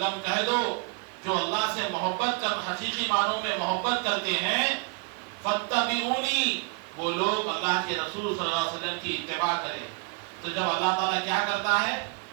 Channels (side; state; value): left; quieter; 30.5 dB